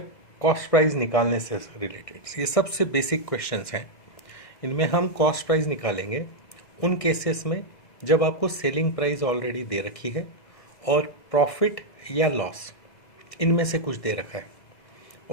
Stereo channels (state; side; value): late; right; 1.6 ms